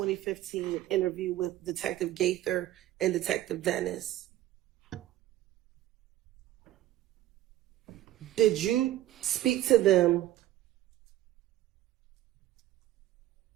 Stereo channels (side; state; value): left; quieter; 14.1 dB